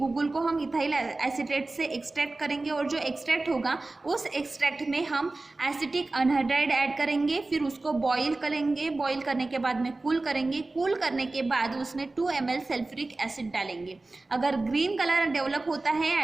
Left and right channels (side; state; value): left; quieter; 3.2 dB